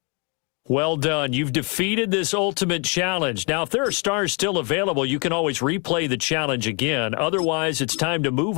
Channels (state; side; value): quieter; right; 34.3 dB